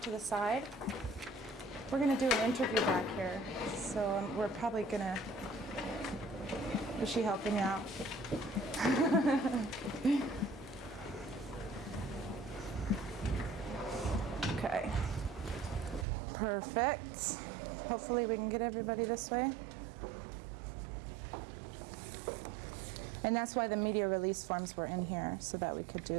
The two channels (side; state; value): left; drops out; at 16.1 s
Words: to the side. We're going to do an interview back here. So we're probably going to... Is she helping you out? Okay. Perfect. Hopefully we can get everybody this way. And that's why the media release forms were in here, so that we could